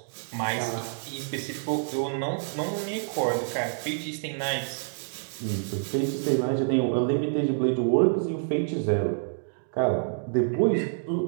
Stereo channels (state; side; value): silent; left; digital silence